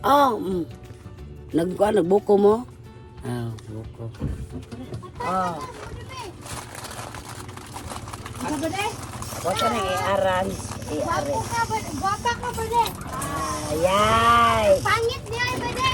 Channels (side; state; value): both; identical; correlation 1.00